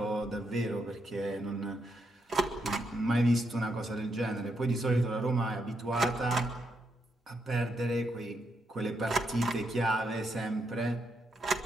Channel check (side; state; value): both; normal; correlation 0.80